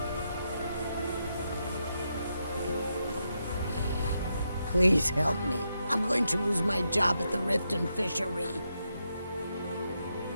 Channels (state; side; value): inverted; both; correlation -0.83